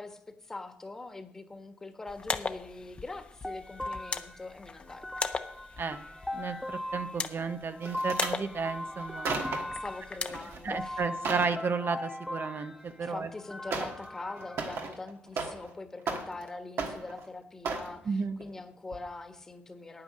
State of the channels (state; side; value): normal; both; correlation 0.66